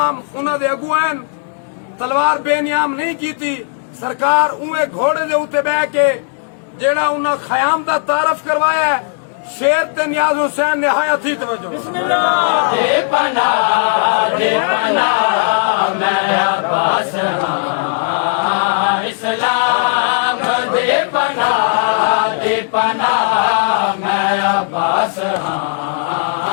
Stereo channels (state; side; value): silent; right; digital silence